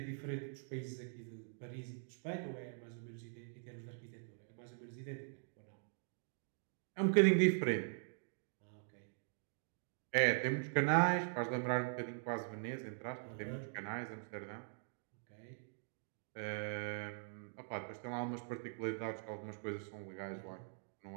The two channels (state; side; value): silent; left; digital silence